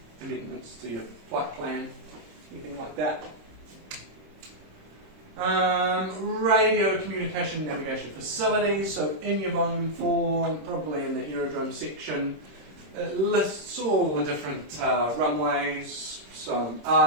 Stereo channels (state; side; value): late; left; 26 ms